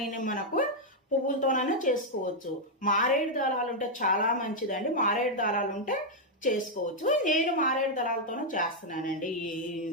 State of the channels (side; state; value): both; normal; correlation -0.02